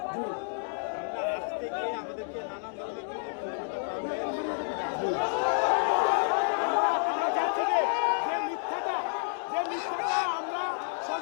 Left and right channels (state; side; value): silent; right; digital silence